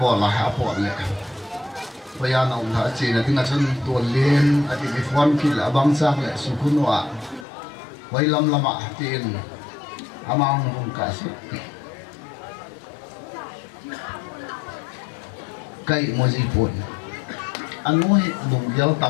bola apo le paya na ung ha chi na tinga chun ton len ati bi phone kil abang sak le sukunwa wailam lama tin amang hung ka su cây moji pun anu hi lung gel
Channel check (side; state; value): right; drops out; at 7.5 s